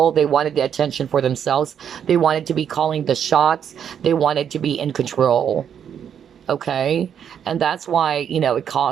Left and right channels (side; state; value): left; quieter; 8.5 dB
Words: They wanted the attention for themselves. They wanted to be calling the shots. They wanted to be in control. Okay? And that's why, it